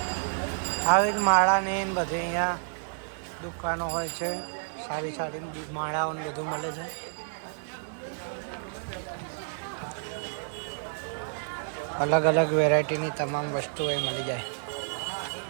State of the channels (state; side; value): silent; left; 58 dB below the other